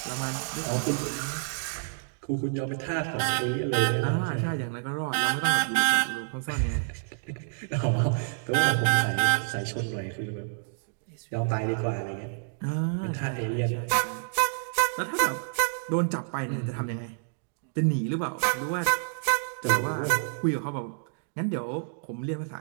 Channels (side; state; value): left; silent; digital silence